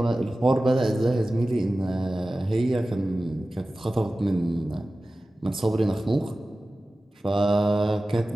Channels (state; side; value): normal; both; correlation 0.96